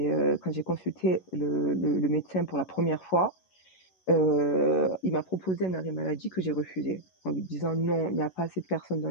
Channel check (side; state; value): right; late; 11 ms